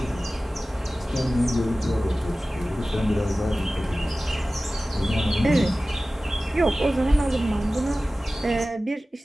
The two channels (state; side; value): normal; both; correlation 0.96